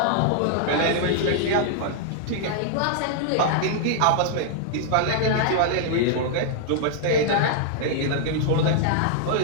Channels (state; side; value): different; both; correlation -0.01